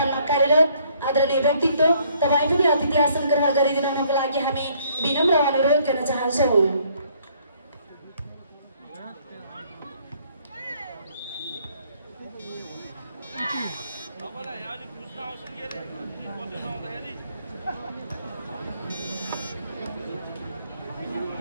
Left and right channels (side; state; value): both; inverted; correlation -0.64